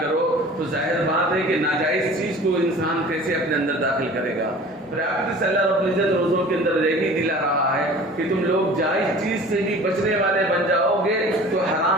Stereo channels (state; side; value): normal; both; correlation 0.44